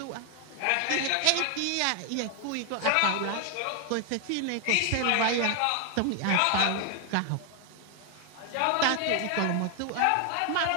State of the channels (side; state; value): both; different; correlation 0.00